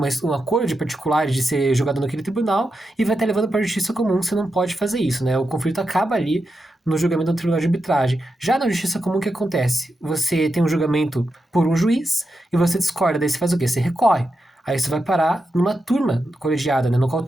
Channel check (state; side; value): normal; both; correlation 0.87